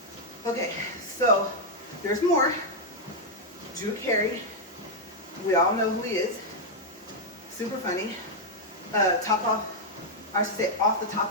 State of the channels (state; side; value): normal; both; correlation -0.02